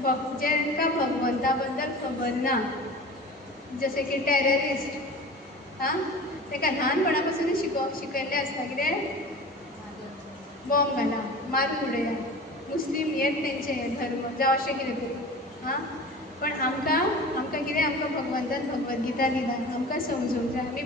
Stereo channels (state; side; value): normal; both; correlation 0.37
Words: जेंकां भगवंता बद्दल खबर ना, जशें की टेररिस्ट, ताका ल्हानपणा पासूनच शिकयल्लें आसता कितें? बॉम्ब घाला, मारून उडया, मुस्लीम हेच तेंचे धर्म जावं अशें कितें तरी. पण आमकां कितें? आमकां भगवंतान भगवद्गीता दिला, आमकां समजूंक जाय. आमी